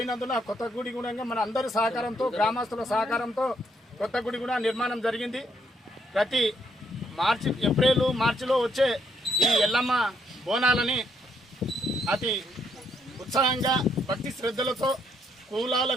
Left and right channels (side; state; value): both; normal; correlation 0.73